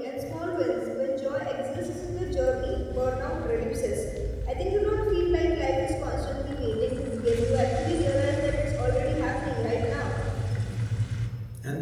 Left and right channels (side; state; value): both; identical; correlation 1.00